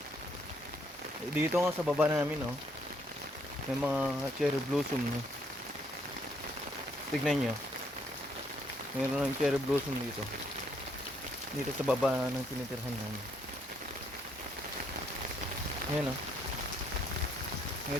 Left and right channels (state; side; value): normal; both; correlation 0.70